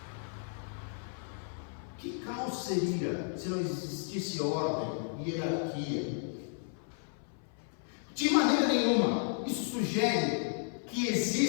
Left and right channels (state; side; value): silent; right; 55 dB below the other